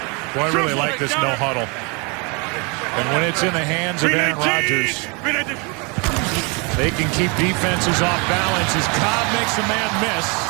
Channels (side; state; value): left; quieter; 31.2 dB